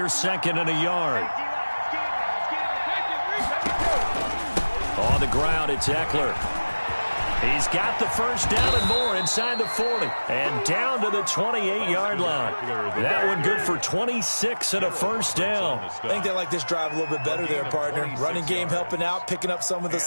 second and a yard. On the ground, it's Eckler. He's got the first down and more inside the 40. And down to the 28-yard line. That one good for 26 and a first down. I think they like this drive a little bit better there, partner. Running game helping out, picking up some of the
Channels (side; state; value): both; inverted; correlation -1.00